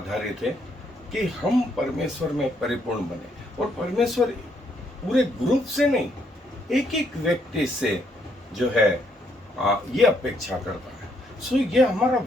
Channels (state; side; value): normal; both; correlation 0.72